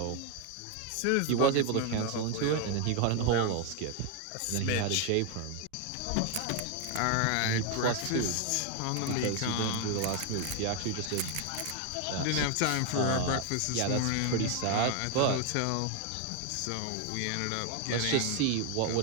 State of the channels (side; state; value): both; different; correlation 0.01